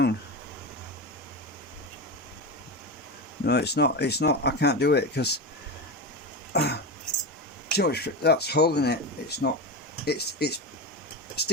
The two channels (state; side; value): normal; both; correlation 0.19